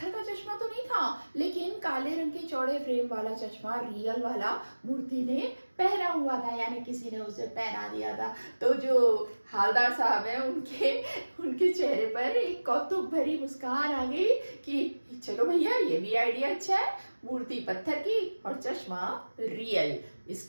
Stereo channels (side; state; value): both; inverted; correlation -1.00